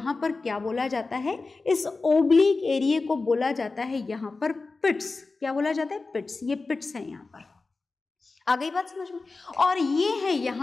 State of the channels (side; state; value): right; quieter; 3.8 dB